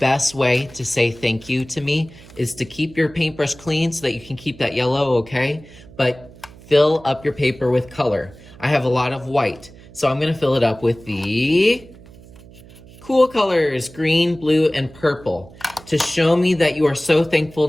way to say thank you to me is to keep your paintbrush clean so that you can keep that yellow, okay? But fill up your paper with color. I have a lot of white, so I'm gonna fill it up with the cool colors, green, blue, and purple. To show me that you are so thankful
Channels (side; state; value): right; noise; hum, 21 dB below the sound